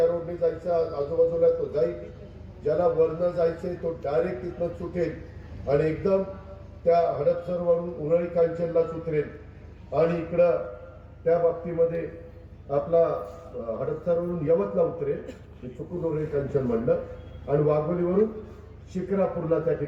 रोडने जायचं आजूबाजूला तो जाईल, ज्याला वरनं जायचंय तो डायरेक्ट तिथनं सुटेल आणि एकदम त्या हडपसरवरून उरळी कांचनला उतरेल. आणि इकडं त्या बाबतीमध्ये आपला हडपसरवरून यवतला उतरेल, चुकून उरळी कांचन म्हणलं, आणि वाघोलीवरून शिक्रापूरला त्या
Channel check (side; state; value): both; identical; correlation 1.00